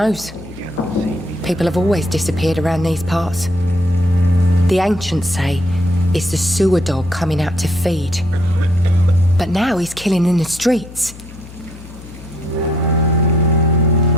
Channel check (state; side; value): noise; left; hum, 17 dB below the sound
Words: People have always disappeared around these parts. The ancients say it's the sewer dog coming out to feed. But now he's killing in the streets.